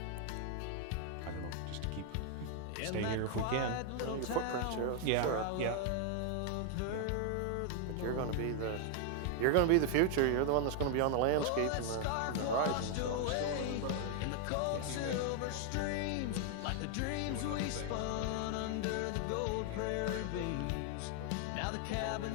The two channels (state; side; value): different; both; correlation 0.00